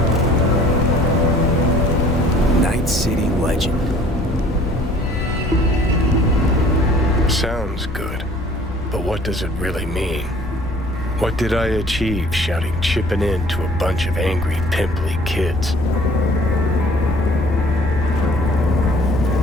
Night City legend. Sounds good. But what does it really mean? What did I achieve shouting chipping in to a bunch of angry, pimply kids?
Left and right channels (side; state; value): both; normal; correlation 0.53